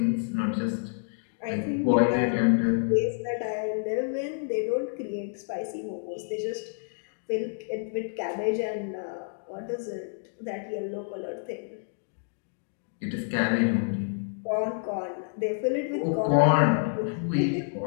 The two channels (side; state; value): right; silent; digital silence